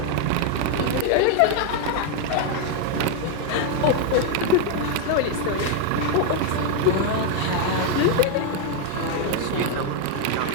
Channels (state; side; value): different; both; correlation 0.01